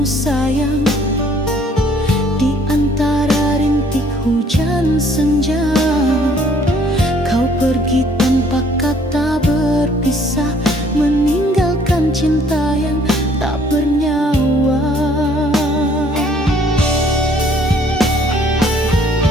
sayang, di antara rintik hujan senja. Kau pergi tanpa kata berpisah, meninggalkan cinta yang tak bernyawa.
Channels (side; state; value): both; normal; correlation 0.60